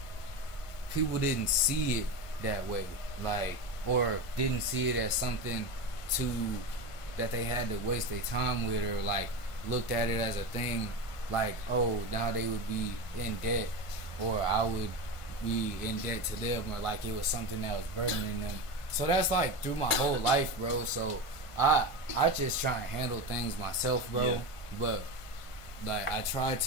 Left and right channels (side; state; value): right; late; 1.5 ms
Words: people didn't see it that way, like, or didn't see it as something that they had to waste their time with, or like looked at it as a thing like, oh, now they would be in debt, or I would be in debt to them, or like it was something that was burdening them. So that's like through my whole life, bro. So I just try and handle things myself, bro. Yeah. But like I try